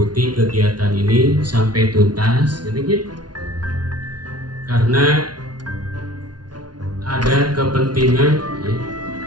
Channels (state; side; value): late; left; 0.69 ms